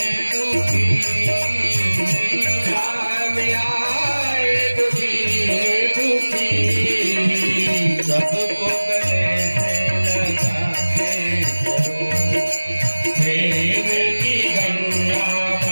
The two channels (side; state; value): both; inverted; correlation -1.00